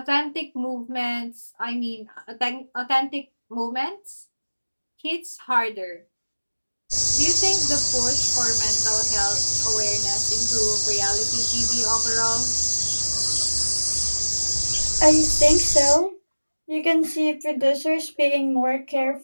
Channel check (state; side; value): inverted; both; correlation -1.00